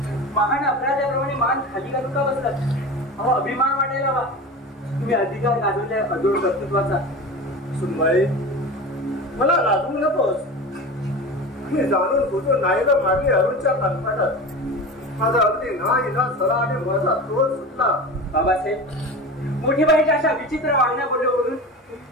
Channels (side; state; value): both; normal; correlation 0.30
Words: महान अपराध्याप्रमाणे मान खाली घालून का बसलात? अहो, अभिमान वाटायला हवा. तुम्ही अधिकार गाजवल्या अजून कर्तृत्वाचा. सुनबाई, मला लाजवू नकोस. मी जाणून बुजून नाही तर मागे अरुणच्या कानपाटात माझा अगदी ना इलाज झाला आणि माझा तोल सुटला. बाबासाहेब, मोठी बाईच्या अशा विचित्र वागण्या बोलल्यावरून